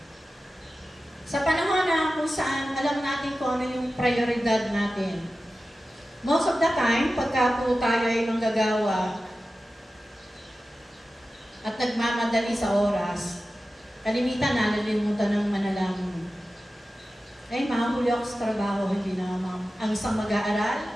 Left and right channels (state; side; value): normal; both; correlation 0.94